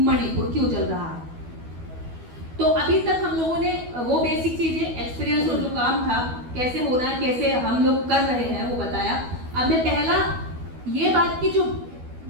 क्यों चल रहा है। तो अभी तक हम लोगों ने वो बेसिक चीजें, एक्सपीरियंस और जो काम था कैसे होना है, कैसे हम लोग कर रहे हैं, वो बताया। अब मैं पहला ये बात की, जो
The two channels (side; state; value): left; late; 12 ms